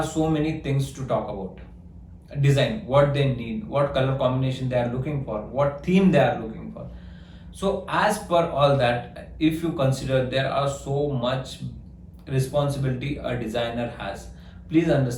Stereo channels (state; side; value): identical; both; correlation 1.00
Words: so many things to talk about. Design, what they need, what color combination they are looking for, what theme they are looking for. So as per all that, if you consider there are so much responsibility a designer has, please